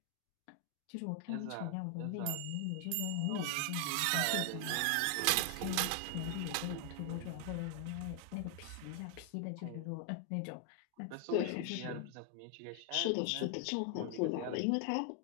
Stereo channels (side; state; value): both; different; correlation 0.00